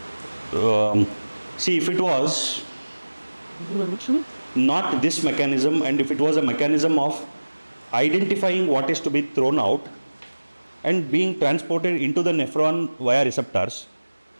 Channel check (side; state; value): both; inverted; correlation -1.00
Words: see, if it was not this mechanism, and if it was a mechanism of identifying what is to be thrown out and being transported into the nephron via receptors,